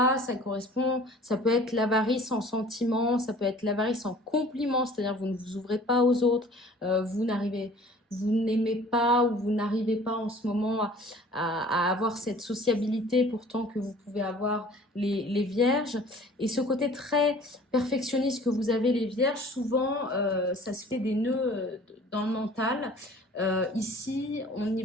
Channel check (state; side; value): normal; both; correlation 0.49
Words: ça peut être l'avarice en sentiment, ça peut être l'avarice en compliment, c'est-à-dire vous ne vous ouvrez pas aux autres, vous n'aimez pas ou vous n'arrivez pas en ce moment à avoir cette sociabilité pourtant que vous pouvez avoir les vierges. Et ce côté très perfectionniste que vous avez les vierges, souvent ça se fait des nœuds dans le mental. Ici, on y